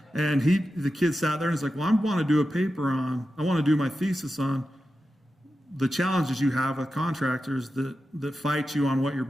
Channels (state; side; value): normal; both; correlation 0.91